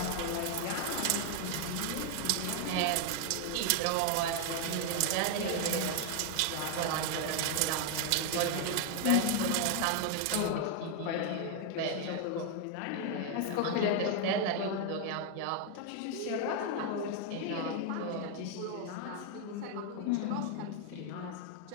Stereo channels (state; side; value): different; both; correlation 0.00